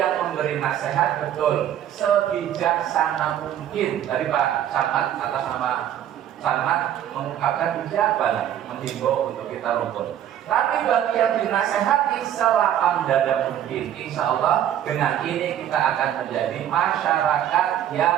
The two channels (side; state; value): left; quieter; 10.7 dB